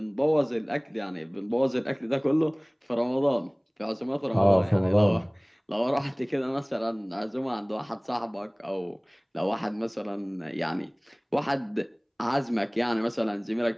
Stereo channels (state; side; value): identical; both; correlation 1.00